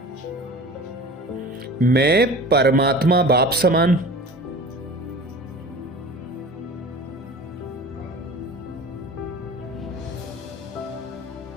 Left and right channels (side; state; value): both; normal; correlation 0.39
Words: मैं परमात्मा बाप समान